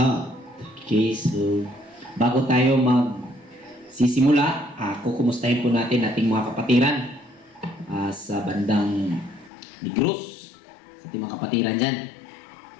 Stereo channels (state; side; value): drops out; right; at 9.5 s